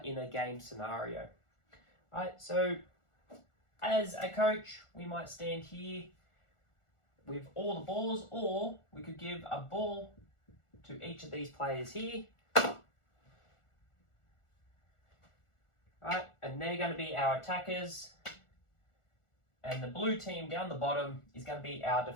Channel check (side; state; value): right; late; 1.4 ms